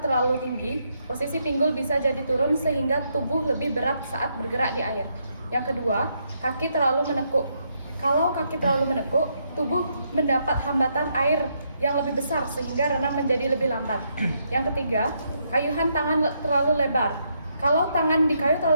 tinggi, posisi pinggul bisa jadi turun sehingga tubuh lebih berat saat bergerak di air. Yang kedua, kaki terlalu menekuk. Kalau kaki terlalu menekuk, tubuh mendapat hambatan air yang lebih besar sehingga renang menjadi lebih lambat. Yang ketiga, kayuhan tangan terlalu lebar. Kalau tangan di kayu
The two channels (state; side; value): inverted; both; correlation -0.77